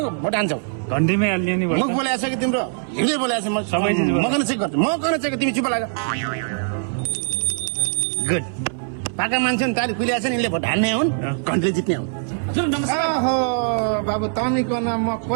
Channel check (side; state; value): left; silent; 59 dB below the other